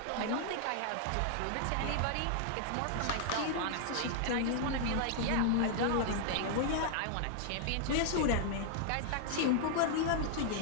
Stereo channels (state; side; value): different; both; correlation 0.00